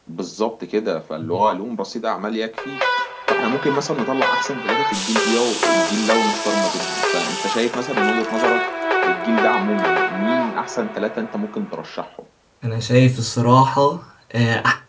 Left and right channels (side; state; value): both; identical; correlation 1.00